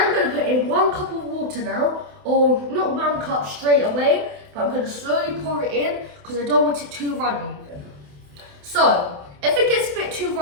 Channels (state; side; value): late; left; 28 ms